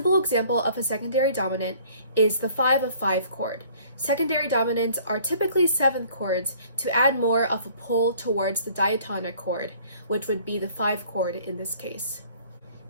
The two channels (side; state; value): both; inverted; correlation -0.55